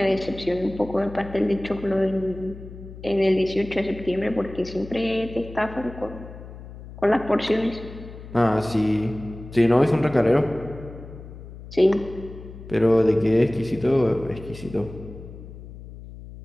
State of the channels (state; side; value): noise; left; hum, 15 dB below the sound